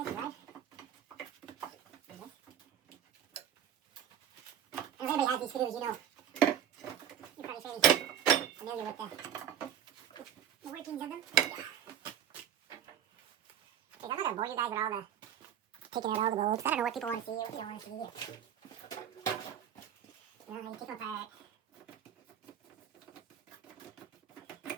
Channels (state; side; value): quieter; left; 9.7 dB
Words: right? And if anybody has these screws, you know, you're probably fairly familiar with the workings of them. Yeah. Okay, I'm not gonna bore you guys with all the, taking out all the bolts. I don't know what people want to see or what they don't want to see. You know, how you take them apart.